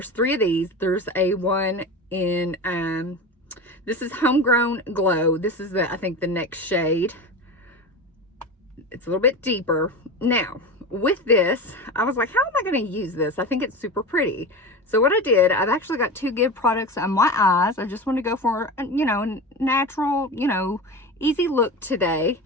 3 of these. There's a one in this is Homegrown Glow. This is I think the next shade. It's a little bit deeper. Now with this, I was like, how am I going to use this? I think it's super pretty. So what I did, I've actually got 2 Give products on my eyes. I just want to go for, you know, natural, you know, easy look today.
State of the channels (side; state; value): both; normal; correlation 0.27